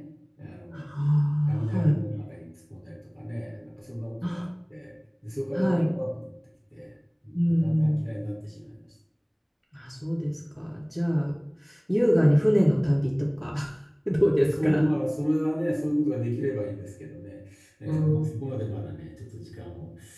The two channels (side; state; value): both; identical; correlation 1.00